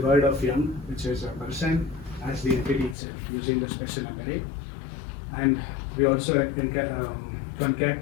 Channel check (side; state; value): right; drops out; at 3.0 s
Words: word of young, which is a person, as the entity itself using the special embedding. And we also concat